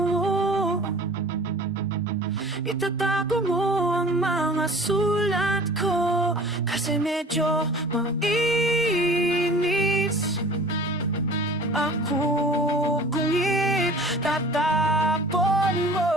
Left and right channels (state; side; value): normal; both; correlation 0.44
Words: itatago mo ang mga sulat ko, kasi medyo mainis ako kung itatapon mo.